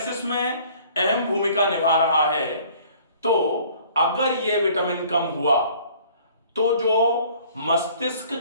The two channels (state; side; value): inverted; both; correlation -0.54